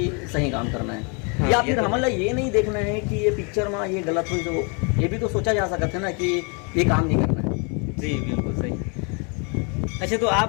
सही काम करना है। हाँ, या फिर तो हमारा ये नहीं देखना है कि ये पिक्चर में ये गलत हुई, तो ये भी तो सोचा जा सकता है ना कि ये काम नहीं करना है। जी, बिल्कुल सही। अच्छा, तो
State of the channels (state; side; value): quieter; right; 34.7 dB